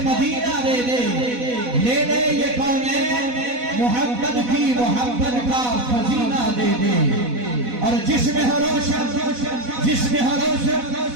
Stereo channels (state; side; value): late; left; 4.1 ms